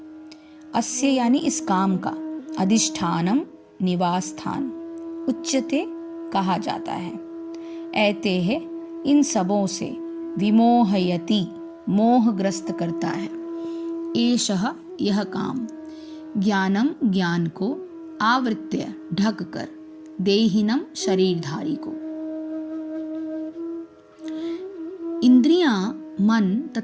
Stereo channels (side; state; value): both; identical; correlation 1.00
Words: अस्य यानी इस काम का, अधिष्ठानम निवास स्थान, उच्यते कहा जाता है। ऐते है इन सबों से, विमोहयति मोहग्रस्त करता है, एषः यह काम, ज्ञानम ज्ञान को, आवृत्य ढक कर, देहिनम शरीरधारी को। इंद्रियां, मन